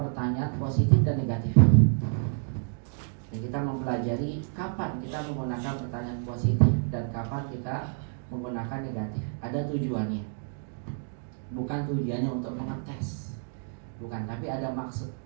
positif dan negatif. Dan kita mempelajari kapan kita menggunakan pertanyaan positif dan kapan kita menggunakan negatif. Ada tujuannya. Bukan tujuannya untuk mengetes, bukan, tapi ada maksud.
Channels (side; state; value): left; silent; 58 dB below the other